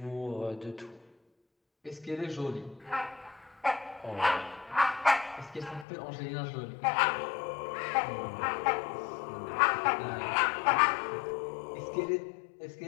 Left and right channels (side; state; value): right; drops out; at 5.9 s